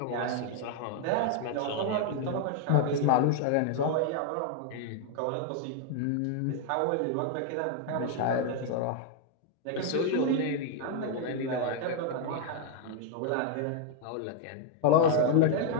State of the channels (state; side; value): different; both; correlation 0.00